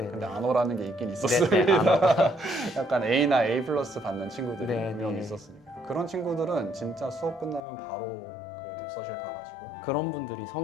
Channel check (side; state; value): right; drops out; at 7.6 s